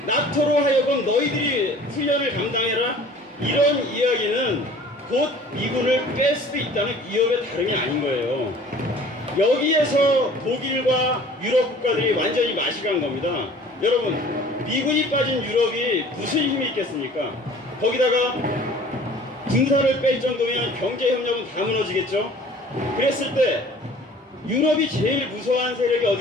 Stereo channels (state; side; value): normal; both; correlation 0.48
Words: 나토로 하여금 너희들이 훈련을 감당해라. 이런 이야기는 곧 미군을 뺄 수도 있다는 위협의 다름이 아닌 거예요. 여기에서 독일과 유럽 국가들이 완전히 맛이 간 겁니다. 여러분, 미군이 빠진 유럽이 무슨 힘이 있겠습니까? 거기다가 군사를 뺄 정도면 경제협력은 다 무너지겠죠? 그랬을 때 유럽이 제일 무서워하는 세력이